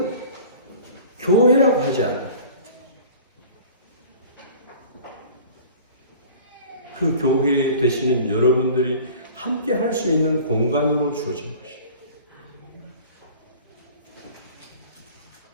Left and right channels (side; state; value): both; inverted; correlation -0.44